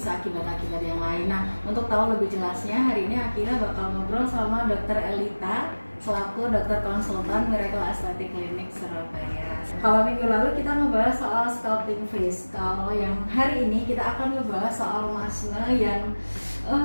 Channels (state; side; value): inverted; both; correlation -1.00